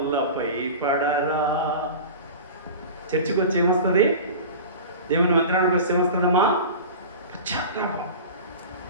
పడరా. చర్చికి వచ్చి ఏమొస్తుంది? దేవుని మందిరానికి వస్తే ఏమొస్తుందమ్మా? పశ్చాత్తాపం.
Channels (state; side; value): inverted; both; correlation -0.33